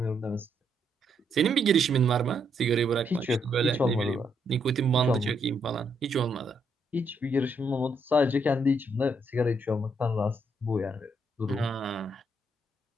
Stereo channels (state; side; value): normal; both; correlation 0.75